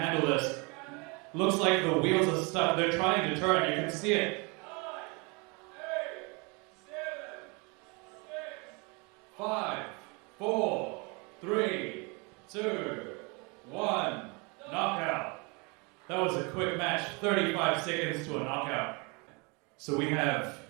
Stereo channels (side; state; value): left; quieter; 29.9 dB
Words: handle this. Looks like the wheels are stuck. They're trying to turn. You can see it. 5, 4, 3, 2, 1, knockout. That was a quick match, 35 seconds to a knockout. So we have